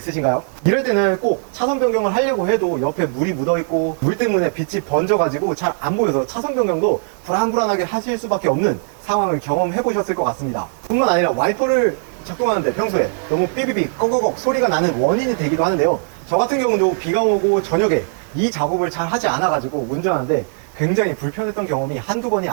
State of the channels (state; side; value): silent; left; digital silence